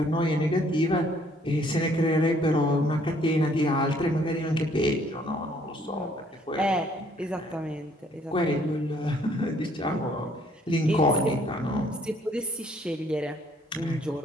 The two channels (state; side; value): normal; both; correlation 0.63